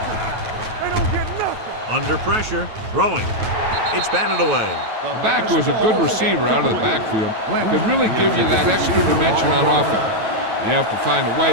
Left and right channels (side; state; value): left; late; 9.2 ms